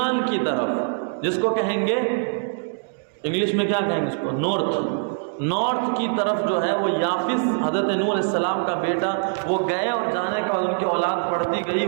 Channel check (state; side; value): silent; left; digital silence